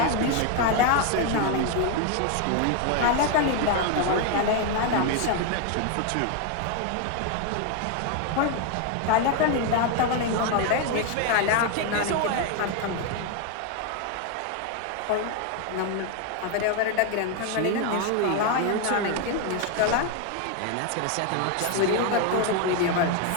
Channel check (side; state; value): both; different; correlation 0.01